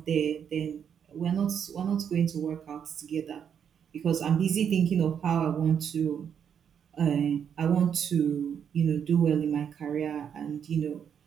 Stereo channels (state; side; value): quieter; left; 8.0 dB